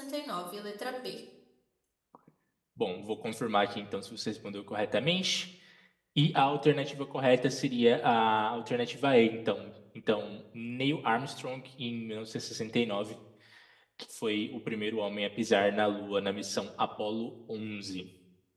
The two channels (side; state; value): both; identical; correlation 1.00